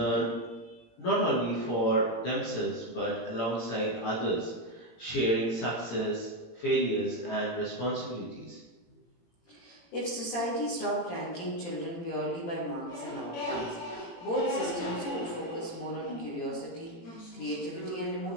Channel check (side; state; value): right; late; 18 ms